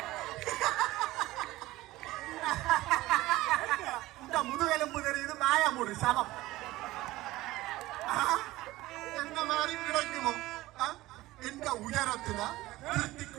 இந்த முதுகெலும்பு தெரியுது மாயமுடு சமம் என்ன மாதிரி கிடைக்குமோ? எந்த உயரத்துல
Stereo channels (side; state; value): left; quieter; 17.9 dB